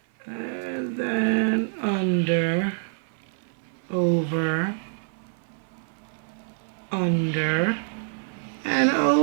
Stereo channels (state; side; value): silent; left; 57 dB below the other